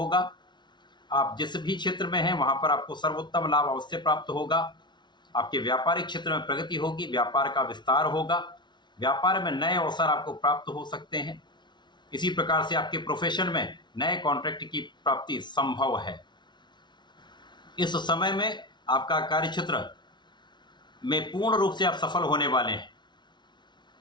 आप जिस भी क्षेत्र में हैं वहाँ पर आपको सर्वोत्तम लाभ अवश्य प्राप्त होगा। आपके व्यापारिक क्षेत्र में प्रगति होगी, व्यापार का विस्तार होगा, व्यापार में नए अवसर आपको प्राप्त हो सकते हैं। इसी प्रकार से आपके प्रोफेशन में नए कॉन्ट्रैक्ट की प्राप्ति संभव है। इस समय में आपका कार्य क्षेत्र में पूर्ण रूप से आप सफल होने वाले हैं।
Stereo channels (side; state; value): right; late; 0.22 ms